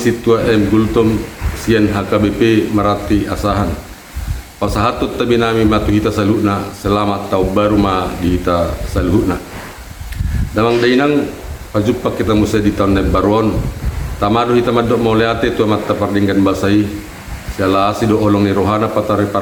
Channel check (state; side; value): identical; both; correlation 1.00